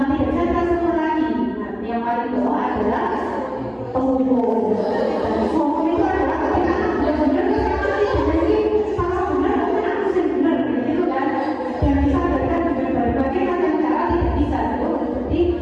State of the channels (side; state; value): both; identical; correlation 1.00